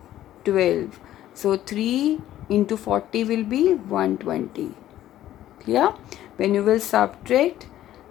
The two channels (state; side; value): quieter; right; 13.1 dB